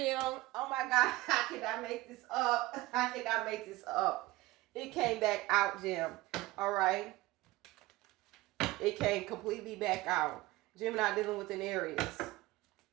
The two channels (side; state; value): left; quieter; 19.0 dB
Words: Oh my God. How can I make this up? How can I make this up? It came back out, Jim. All right. It came completely back out. Gemini dealing with an Aries.